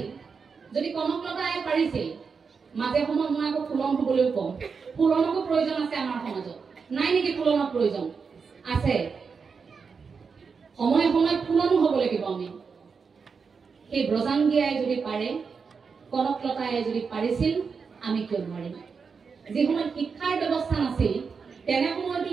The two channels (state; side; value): quieter; left; 5.5 dB